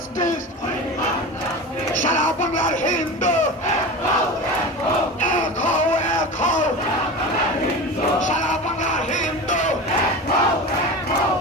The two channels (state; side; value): normal; both; correlation 0.29